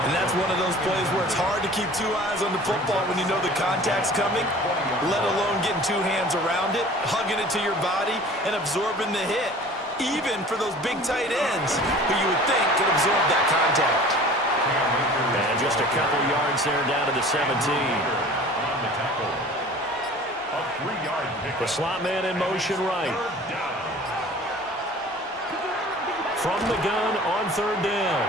And that's one of those plays where it's hard to keep 2 eyes on the football when you know the contact's coming, let alone getting 2 hands around it, hugging it to your body, and absorbing the hit, even for those big tight ends who you would think could absorb that contact. And just a couple yards there down to the 17. The slot man in motion right. From the gun on 3rd down.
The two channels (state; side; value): normal; both; correlation 0.45